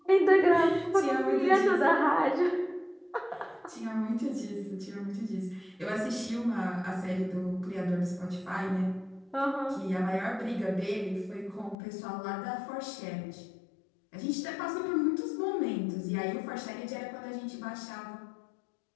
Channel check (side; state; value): right; drops out; at 11.8 s